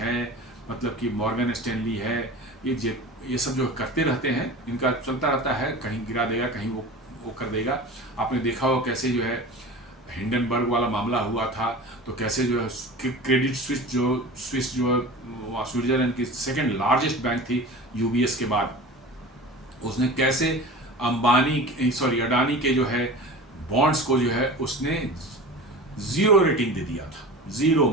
मतलब कि मॉर्गन स्टैनली है, ये सब जो करते रहते हैं, इनका चलता रहता है, कहीं गिरा देगा, कहीं वो कर देगा। आपने देखा हो कैसे जो है हिंडनबर्ग वाला मामला हुआ था, तो कैसे जो है क्रेडिट स्विस जो स्विट्जरलैंड की सेकंड लार्जेस्ट बैंक थी यूबीएस के बाद, उसने कैसे अडानी के जो है बॉन्ड्स को जो है उसने 0 रेटिंग दे दिया था। 0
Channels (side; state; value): both; normal; correlation 0.35